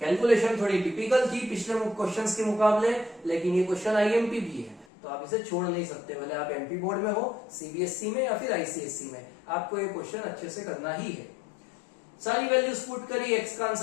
थोड़ी टिपिकल थी पिछले क्वेश्चंस के मुकाबले, लेकिन ये क्वेश्चन आईएमपी भी है तो आप इसे छोड़ नहीं सकते, भले आप एमपी बोर्ड में हो, सीबीएसई में या फिर आईसीएसई में, आपको ये क्वेश्चन अच्छे से करना ही है। सारी वैल्यूज पुट करी, एक्स का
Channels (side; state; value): right; drops out; at 4.9 s